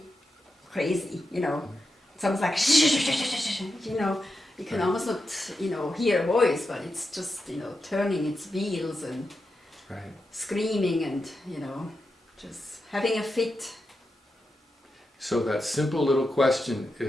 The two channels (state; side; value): normal; both; correlation 0.88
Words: crazy, you know. It's almost like, you know, you can Right. almost not, you know, hear a voice, but it's just, you know, turning its wheels and Right. screaming and, you know, just having a fit. So that simple little question